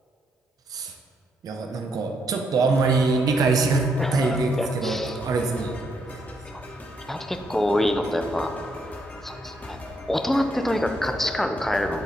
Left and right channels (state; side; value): normal; both; correlation 0.76